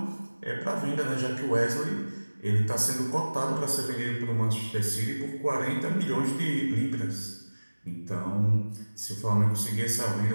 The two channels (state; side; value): inverted; both; correlation -1.00